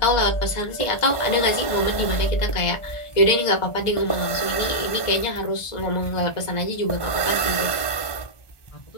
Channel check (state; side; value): late; right; 1.4 ms